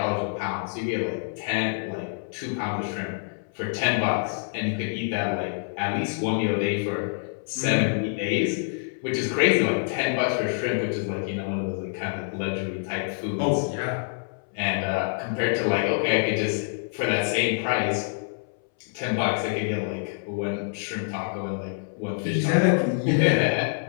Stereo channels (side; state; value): right; silent; 61 dB below the other